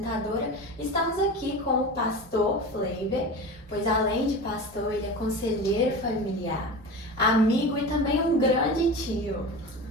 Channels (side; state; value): both; normal; correlation 0.30